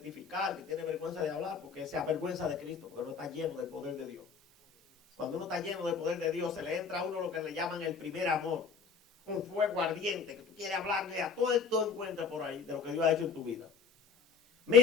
que tiene vergüenza de hablar, porque se avergüenza de Cristo, porque no está lleno del poder de Dios. Cuando uno está lleno del poder de Dios, se le entra a uno lo que le llaman el primer amor. Un fuego ardiente, que tú quieres hablarle a todo esto encuentra por ahí de lo que Dios ha hecho en tu vida.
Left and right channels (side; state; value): right; quieter; 5.7 dB